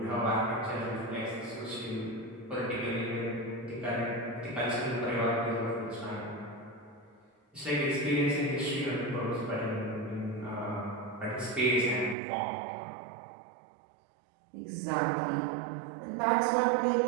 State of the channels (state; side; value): drops out; left; at 12.2 s